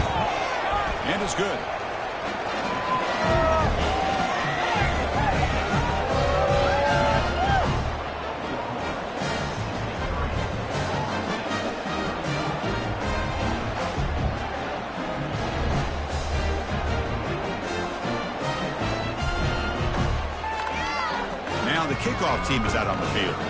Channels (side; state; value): both; identical; correlation 1.00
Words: And it's good. Now the kickoff team is out on the field.